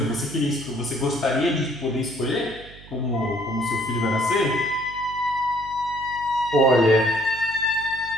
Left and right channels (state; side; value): noise; right; hum, 19 dB below the sound